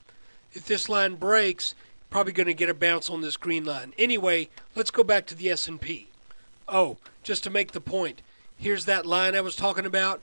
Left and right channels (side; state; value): both; inverted; correlation -1.00